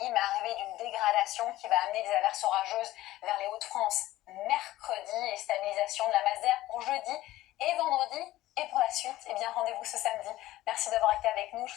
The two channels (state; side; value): quieter; right; 16.1 dB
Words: mais arrivée d'une dégradation qui va amener des averses orageuses vers les Hauts-de-France mercredi et stabilisation de la masse d'air pour jeudi et vendredi. Et pour la suite, rendez-vous ce samedi. Merci d'avoir été avec nous. Je